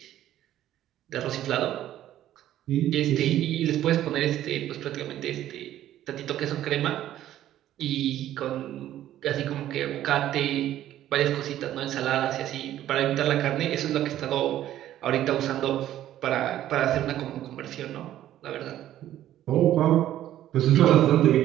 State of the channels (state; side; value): quieter; left; 12.6 dB